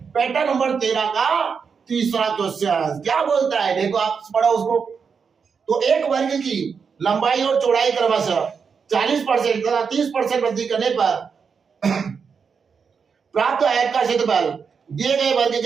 पैटर्न नंबर 13 का तीसरा क्वेश्चन। क्या बोलता है देखो आप पढ़ो उसको, तो एक वर्ग की लंबाई और चौड़ाई क्रमशः 40% तथा 30% वृद्धि करने पर प्राप्त आयत का क्षेत्रफल दिए गए वर्ग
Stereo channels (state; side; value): quieter; left; 6.0 dB